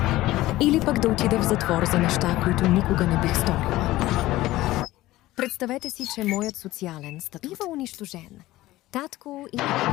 Или пък да отида в затвор за неща, които никога не бих сторила. Представете си, че моят социален статут бива унищожен. Татко или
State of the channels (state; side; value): quieter; right; 16.9 dB